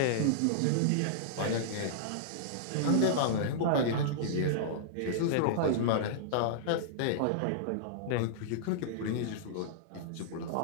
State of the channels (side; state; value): both; different; correlation -0.02